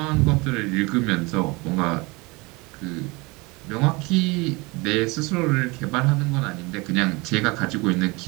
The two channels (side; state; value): left; quieter; 25.5 dB